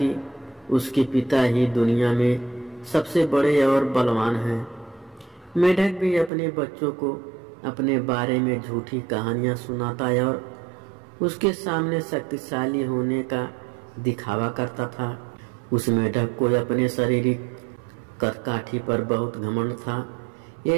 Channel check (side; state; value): left; drops out; at 6.3 s